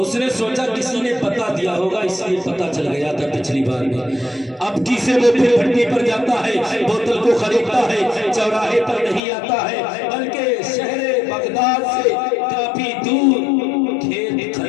اس نے سوچا کسی نے بتا دیا ہوگا، اس لیے پتا چل گیا تھا پچھلی بار میں۔ اب کسی وہ پھر بھٹی پر جاتا ہے، بوتل کو خریدتا ہے، چوراہے پر نہیں آتا ہے بلکہ شہر بغداد سے کافی دور کھیت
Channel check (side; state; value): right; drops out; at 9.2 s